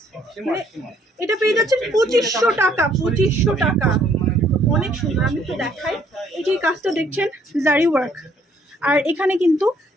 এটা পেয়ে যাচ্ছেন 2500 টাকা। 2500 টাকা, অনেক সুন্দর। আমি তো দেখাই, এই যে কাজটা দেখছেন জারি ওয়ার্ক, আর এখানে কিন্তু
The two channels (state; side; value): normal; both; correlation 0.65